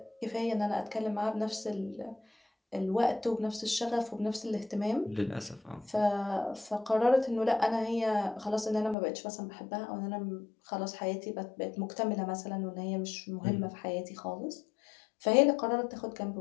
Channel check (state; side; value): drops out; right; at 9.0 s